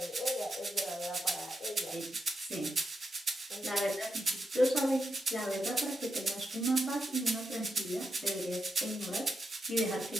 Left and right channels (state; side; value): normal; both; correlation 0.85